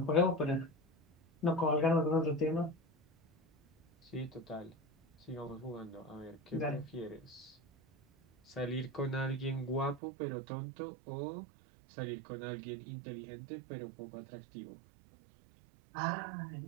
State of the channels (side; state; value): left; drops out; at 10.0 s